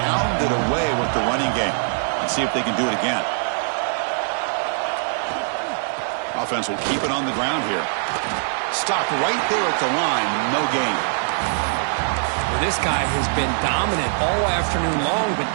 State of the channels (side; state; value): left; silent; digital silence